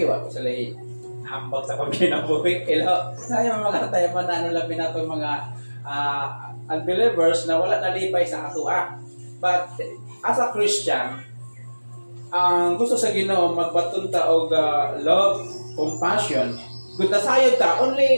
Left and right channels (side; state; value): both; inverted; correlation -1.00